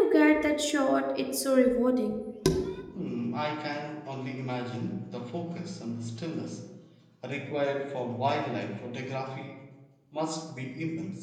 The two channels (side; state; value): both; identical; correlation 1.00